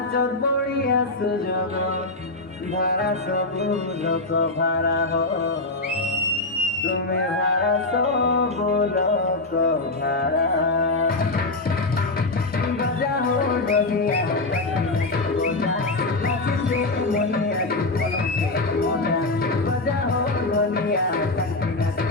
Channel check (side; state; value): right; quieter; 3.0 dB